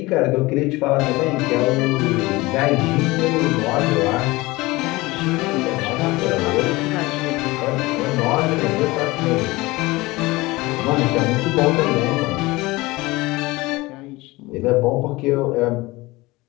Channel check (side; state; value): right; quieter; 21.2 dB